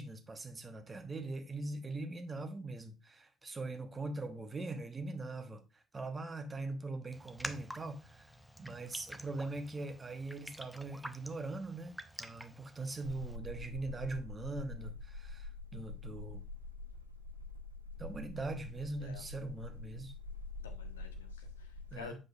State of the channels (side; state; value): both; normal; correlation 0.69